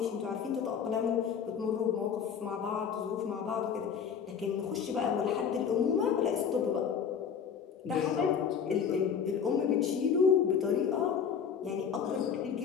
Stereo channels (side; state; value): right; quieter; 7.2 dB